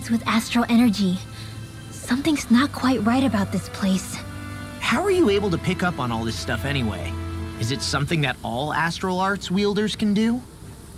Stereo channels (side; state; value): both; identical; correlation 1.00